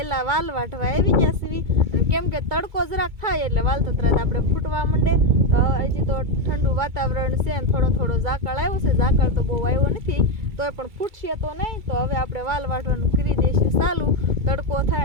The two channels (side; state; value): left; late; 2.3 ms